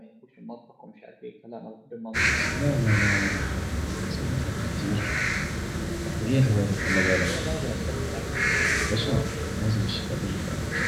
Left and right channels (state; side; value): identical; both; correlation 1.00